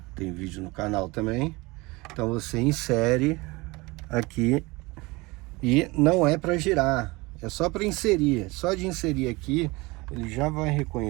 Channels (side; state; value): left; quieter; 23.5 dB